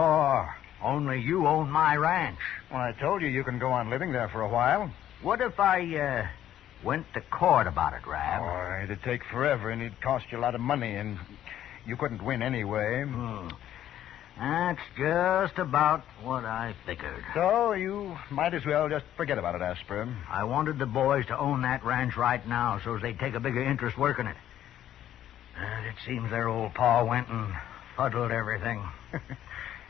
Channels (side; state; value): right; quieter; 11.6 dB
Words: Only you own my ranch. Well, I told you can go on living there for a while. What if I, went to court about it, Rab? Oh, it'd take forever, and it'd cost you a lot of money, and you couldn't win anyway. That's just about what I figured. So you might as well just forget about it, Asper. I wanted the boys to own that ranch right now so they'd take a bigger interest working it. And it seems their old pa went and fuddled everything.